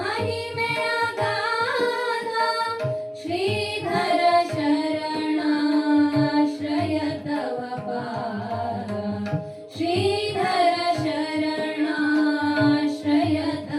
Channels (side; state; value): both; identical; correlation 1.00